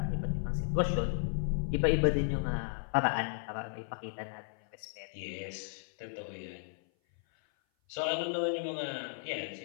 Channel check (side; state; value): right; silent; 55 dB below the other